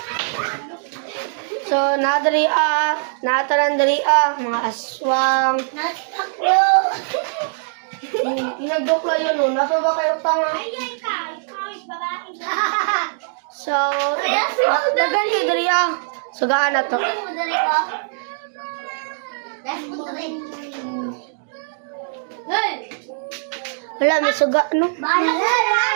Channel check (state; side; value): silent; left; digital silence